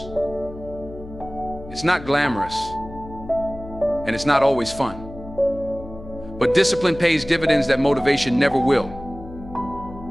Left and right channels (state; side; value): noise; left; hum, 15 dB below the sound